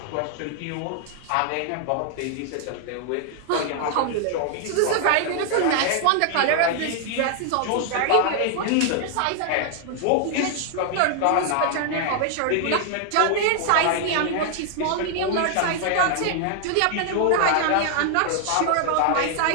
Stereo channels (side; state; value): both; different; correlation 0.00